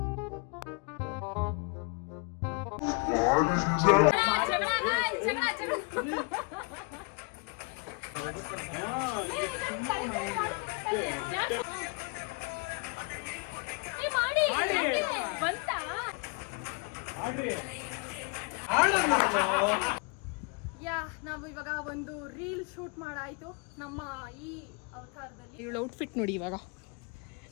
ನಾವು ಇವಾಗ ಒಂದು ರೀಲ್ ಶೂಟ್ ಮಾಡಾಯ್ತು ನಮ್ಮ ಈ ಅವತಾರದಲ್ಲಿ. ಇವಳ ಔಟ್ಫಿಟ್ ನೋಡಿ ಇವಾಗ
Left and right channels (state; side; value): quieter; right; 32.0 dB